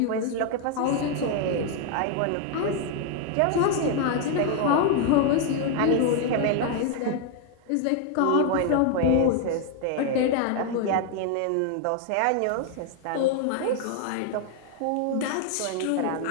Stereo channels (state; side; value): different; both; correlation 0.00